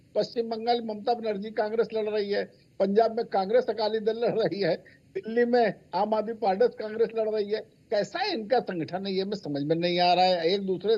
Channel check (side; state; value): both; identical; correlation 1.00